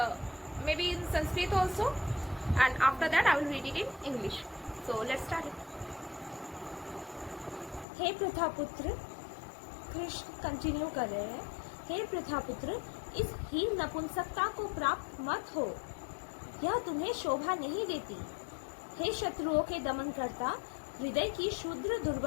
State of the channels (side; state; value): right; drops out; at 7.9 s